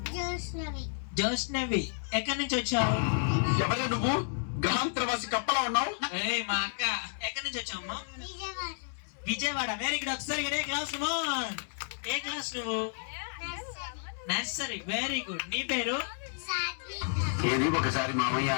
జోష్నవి. ఎక్కడి నుంచి వచ్చావు? ఎవరు నువ్వు? గ్రహాంతరవాసి కప్పలా ఉన్నావు. మా అక్క. ఎక్కడి నుంచి వచ్చావమ్మా? విజయవాడ. Very good. ఒకసారి ఏ క్లాస్ నువ్వు? ఏ క్లాస్ నువ్వు? నర్సరీ. Very good. నీ పేరు? ఏది ఒకసారి మామయ్య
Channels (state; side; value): silent; right; digital silence